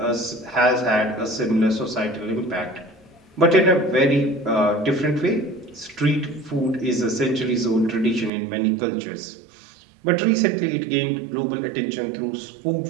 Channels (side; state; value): left; drops out; at 8.3 s